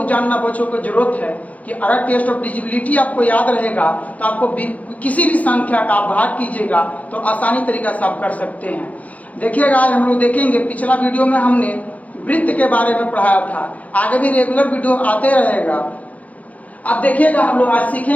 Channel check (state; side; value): late; right; 0.071 ms